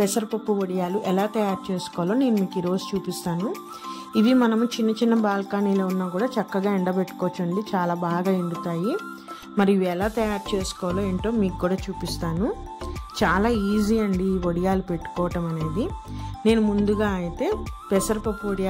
వడియాలు ఎలా తయారు చేసుకోవాలో నేను మీకు ఈరోజు చూపిస్తాను. ఇవి మనము చిన్న చిన్న బాల్కనీలో ఉన్నా కూడా చక్కగా ఎండబెట్టుకోవచ్చు అండి, చాలా బాగా ఎండుతాయి. మరి ఇవి ఎలా తయారు చేసుకోవాలో ఏంటో మీకు కూడా చూపిస్తాను. చాలా ఈజీ అండి ఈ వడియాలు పెట్టుకోవటం అనేది. నేను ముందుగా అయితే పెసరపప్పు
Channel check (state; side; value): identical; both; correlation 1.00